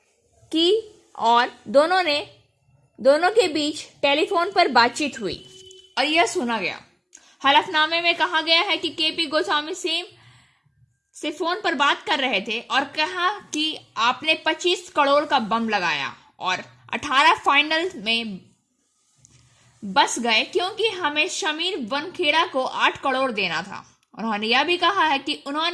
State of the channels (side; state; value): both; identical; correlation 1.00